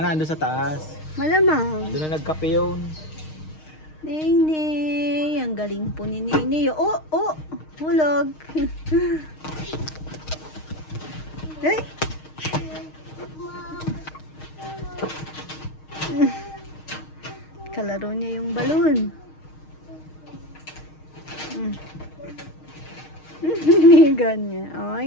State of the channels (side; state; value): right; late; 6.4 ms